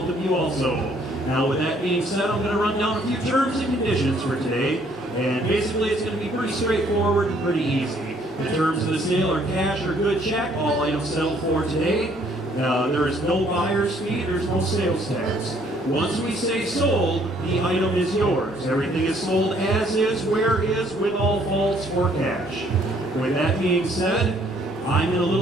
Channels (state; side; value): normal; both; correlation 0.63